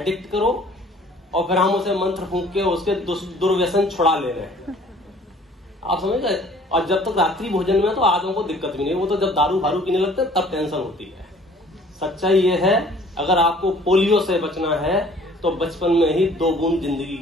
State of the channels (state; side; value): normal; both; correlation 0.54